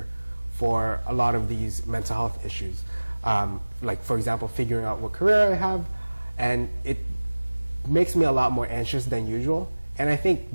for a lot of these mental health issues. Like, for example, figuring out what career I have, and it makes me a lot more anxious than usual. And I think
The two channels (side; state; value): both; inverted; correlation -1.00